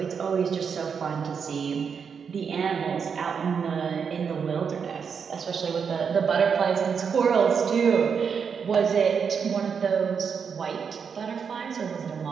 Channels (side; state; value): left; quieter; 6.4 dB